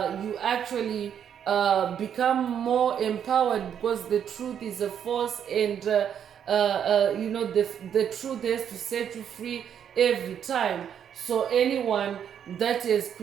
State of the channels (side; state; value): left; quieter; 8.7 dB